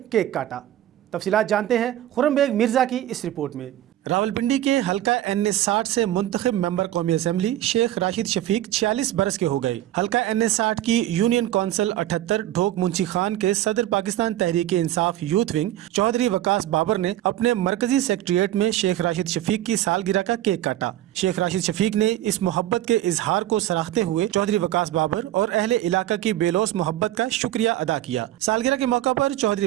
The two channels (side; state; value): left; quieter; 13.5 dB